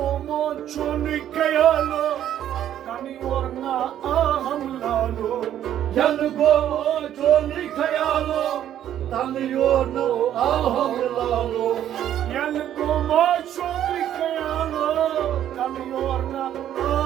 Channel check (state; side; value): quieter; left; 11.0 dB